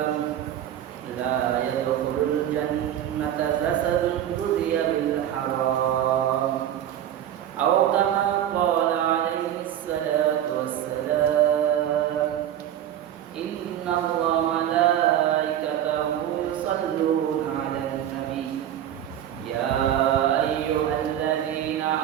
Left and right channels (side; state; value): left; quieter; 11.0 dB